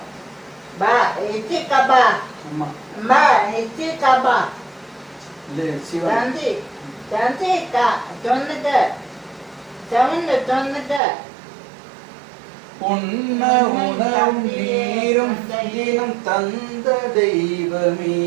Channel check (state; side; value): drops out; left; at 11.0 s